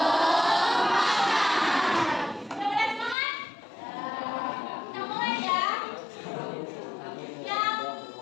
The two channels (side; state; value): right; drops out; at 3.2 s